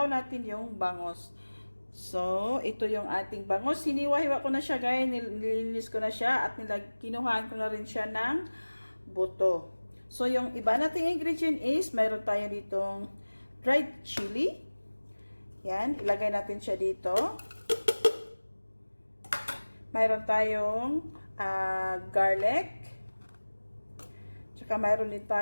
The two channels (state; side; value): inverted; both; correlation -1.00